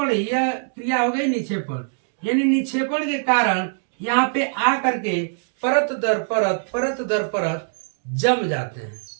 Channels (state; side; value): silent; left; digital silence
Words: यह क्रिया हो गई निक्षेपण, यानी निक्षेपण के कारण यहाँ पे आ करके परत दर परत जम जाते हैं।